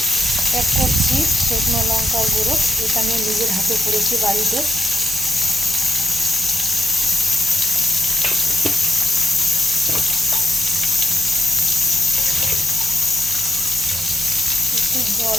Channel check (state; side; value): normal; both; correlation 0.86